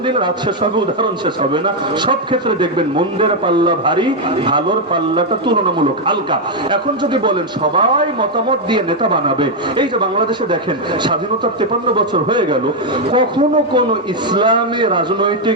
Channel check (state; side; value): normal; both; correlation 0.01